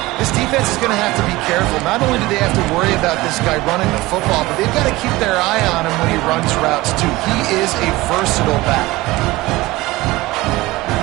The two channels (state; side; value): quieter; left; 19.6 dB